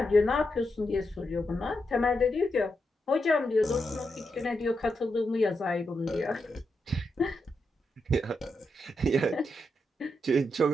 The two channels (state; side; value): normal; both; correlation 0.84